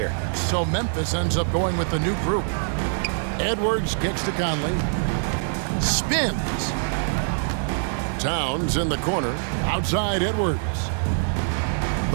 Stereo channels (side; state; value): left; silent; digital silence